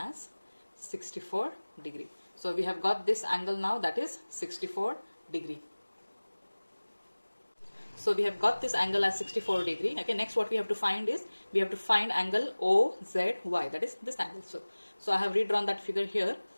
as 64 degree. So we have got this angle now, that is 64 degree. So we have got this angle as 64 degree. Okay, next what we have to find is, we have to find angle OZY, that is this angle. So I have redrawn that figure here.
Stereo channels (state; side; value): inverted; both; correlation -1.00